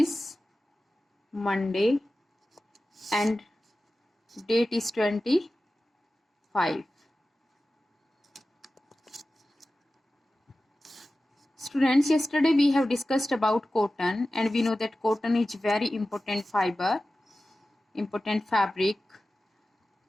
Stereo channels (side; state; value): both; normal; correlation 0.95